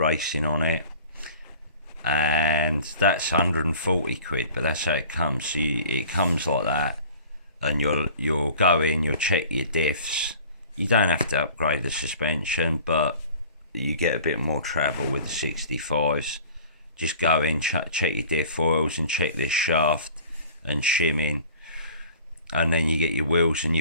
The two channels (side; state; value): both; inverted; correlation -0.46